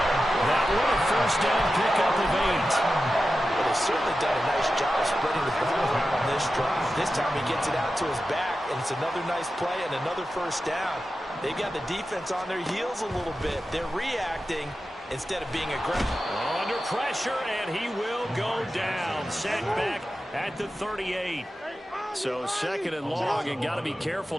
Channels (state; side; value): normal; both; correlation 0.92